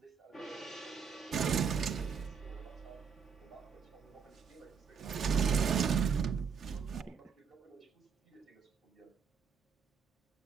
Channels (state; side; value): quieter; left; 6.4 dB